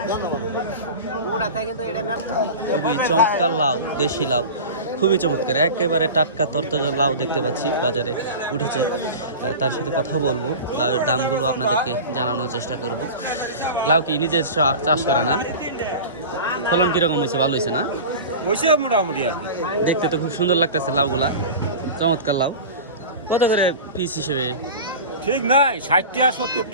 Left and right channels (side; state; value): both; inverted; correlation -0.32